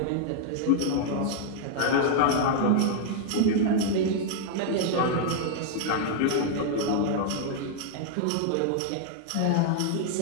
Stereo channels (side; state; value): both; different; correlation 0.00